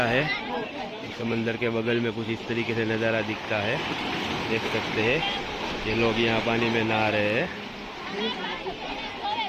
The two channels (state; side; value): identical; both; correlation 1.00